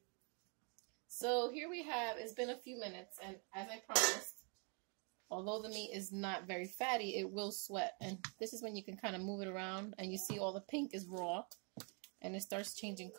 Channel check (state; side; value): quieter; left; 37.1 dB